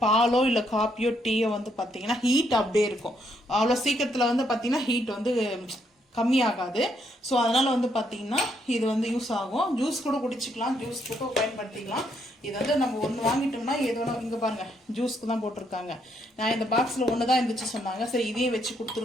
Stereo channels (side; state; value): both; normal; correlation 0.74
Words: பாலோ இல்லை காப்பியோ டீயோ வந்து பார்த்தீங்கன்னா ஹீட் அப்படியே இருக்கும். அவ்வளோ சீக்கிரத்தில் வந்து பார்த்தீங்கன்னா ஹீட் வந்து கம்மியாகாது. ஸோ அதனால் வந்து பார்த்தீங்கன்னா இது வந்து யூஸ் ஆகும். ஜூஸ் கூட குடிச்சிக்கலாம், ஜூஸ் கூட பயன்படுத்திக்கலாம். இது வந்து நம்ம ஒன்று வாங்கிட்டோம்னா ஏதோ இங்கே பாருங்கள் ஜூஸ்க்கு தான் போட்டிருக்காங்க. நான் இந்த பாக்ஸில் ஒன்று தான் இருந்துச்சு சொன்னாங்க. சரி இதையே வச்சு